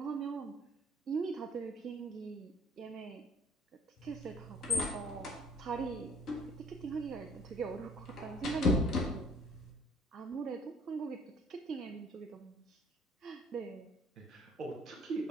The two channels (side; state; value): both; normal; correlation 0.55